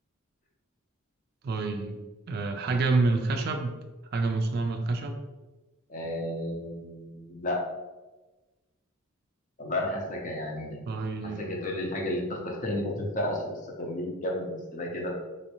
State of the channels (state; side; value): normal; both; correlation 0.52